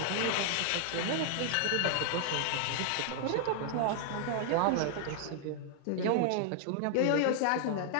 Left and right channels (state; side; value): different; both; correlation 0.00